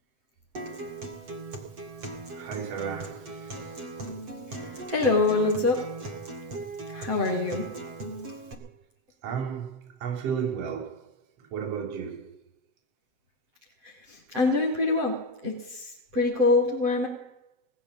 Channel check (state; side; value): late; left; 7.8 ms